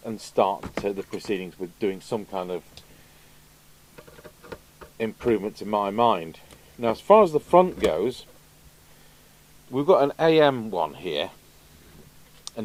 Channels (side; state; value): both; identical; correlation 1.00